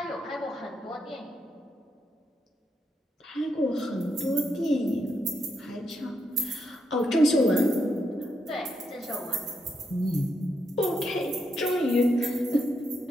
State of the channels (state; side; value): normal; both; correlation 0.81